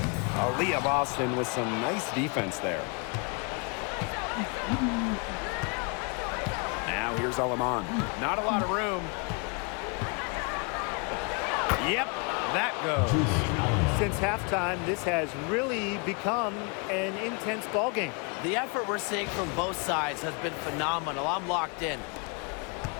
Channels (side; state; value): right; quieter; 34.4 dB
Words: Aaliyah Boston with some nice defense there. Now here's Alaman. Not a lot of room. Yep, that goes. Since halftime, this has really become an intense ball game. The effort we're seeing from both sides has been phenomenal. I'm locked in.